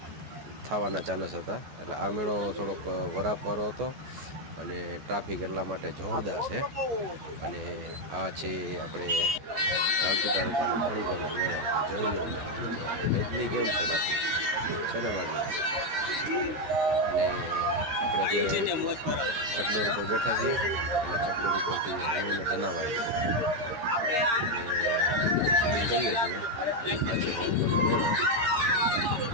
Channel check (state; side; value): late; left; 14 ms